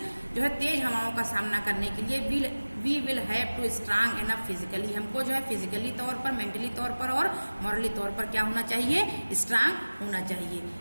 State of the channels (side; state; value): both; inverted; correlation -1.00